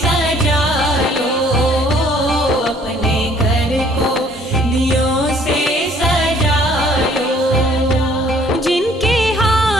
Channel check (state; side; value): normal; both; correlation 0.59